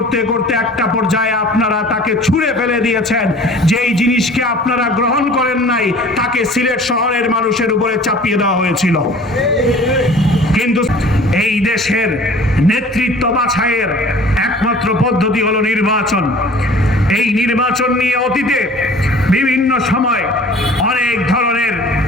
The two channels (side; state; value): both; normal; correlation 0.47